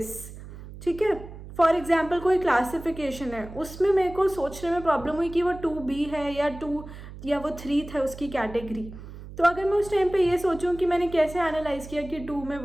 ठीक है. फॉर एग्जाम्पल कोई क्लासिफिकेशन है, उसमें मेरे को सोचने में प्रॉब्लम हुई कि वो 2B है या 2 या वो 3 था उसकी कैटेगरी. तो अगर मैं उस टाइम पे ये सोचूं कि मैंने कैसे एनालाइज किया कि 2 में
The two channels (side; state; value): right; noise; hum, 14 dB below the sound